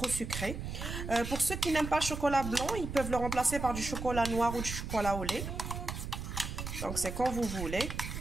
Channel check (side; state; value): right; noise; rumble, 6 dB below the sound